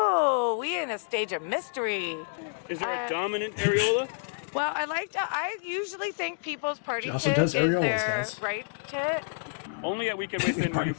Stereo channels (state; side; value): silent; right; digital silence